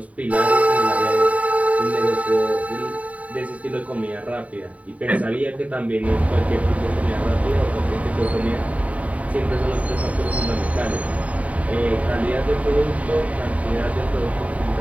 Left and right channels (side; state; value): left; late; 0.068 ms